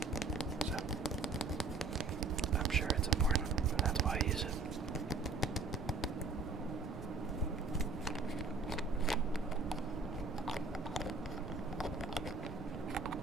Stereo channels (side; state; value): left; quieter; 3.9 dB